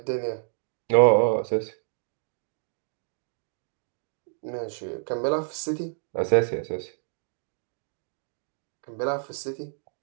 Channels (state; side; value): silent; left; digital silence